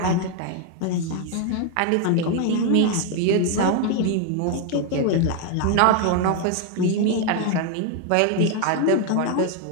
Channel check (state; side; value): different; both; correlation 0.01